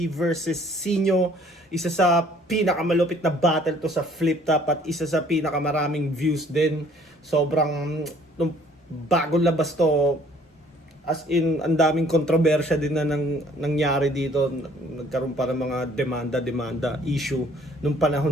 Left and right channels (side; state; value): both; normal; correlation 0.57